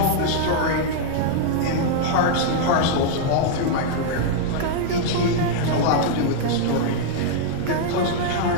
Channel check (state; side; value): different; both; correlation -0.01